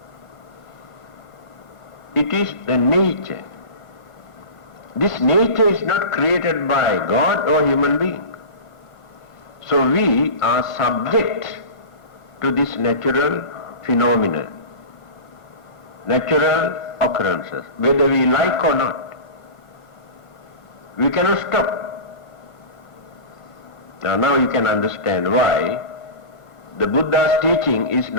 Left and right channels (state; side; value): late; right; 1.2 ms